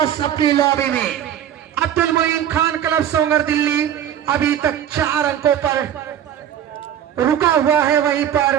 अपनी लॉबी में। अब्दुल मोइन खान क्लब सोंगर दिल्ली अभी तक 4 अंकों पर रुका हुआ है। वहीं पर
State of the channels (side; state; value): left; quieter; 10.1 dB